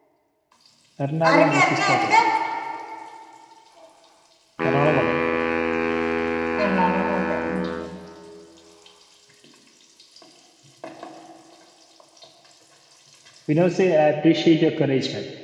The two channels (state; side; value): identical; both; correlation 1.00